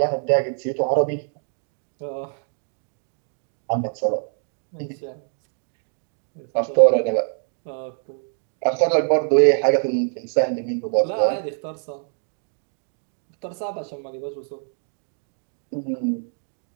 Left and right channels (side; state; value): left; silent; 62 dB below the other